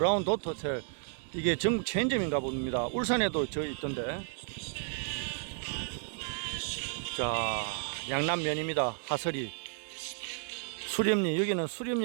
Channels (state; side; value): silent; left; 56 dB below the other